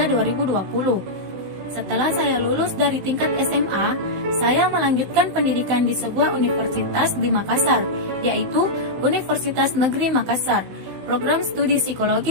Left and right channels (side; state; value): left; late; 16 ms